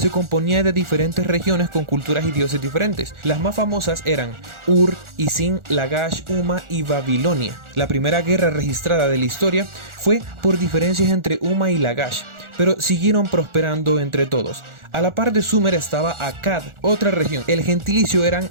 componía de diferentes regiones con culturas y dioses diferentes. Las más famosas eran Ur, Isin, Lagash, Uma y Babilonia. La primera guerra registrada de la historia fue por diferencias entre Uma y Lagash, pero siguieron prosperando entre todos. A la par de Sumer estaba Akkad, otra región. El gentilicio eran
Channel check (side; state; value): left; late; 1.4 ms